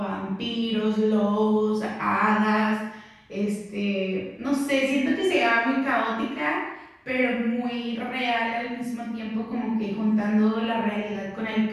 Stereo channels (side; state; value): both; identical; correlation 1.00